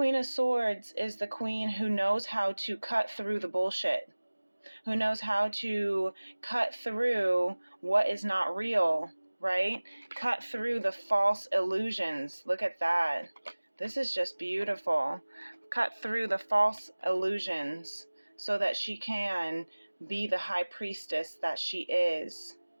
of Swords is the queen who knows how to cut through the bullshit, who knows how to cut through what is not real, right? Cut through the false illusions. Look at that. This is just beautiful. Cut through the false illusions so that she can be the high priestess that she is.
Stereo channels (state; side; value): inverted; both; correlation -1.00